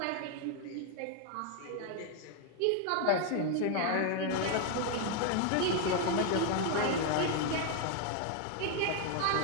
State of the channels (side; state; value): both; different; correlation 0.01